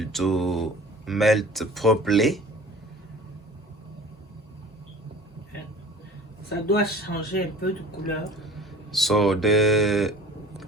to melt properly. Ça doit changer un peu de couleur. So the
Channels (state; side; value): normal; both; correlation 0.44